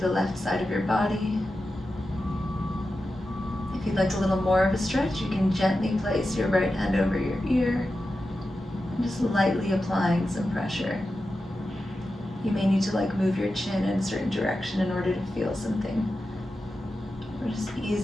the left side of your body. If you'd like a little more of a stretch, you can gently place your right hand over your ear and just lightly applying some pressure. You may need to move your chin in a certain direction in order to feel something. We're just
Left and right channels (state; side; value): normal; both; correlation 0.91